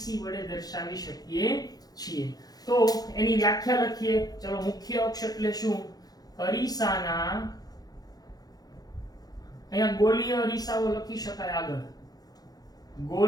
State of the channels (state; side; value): late; right; 0.19 ms